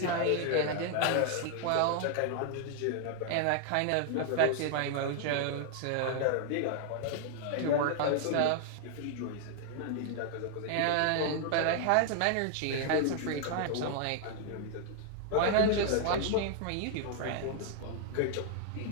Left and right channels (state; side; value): different; both; correlation 0.00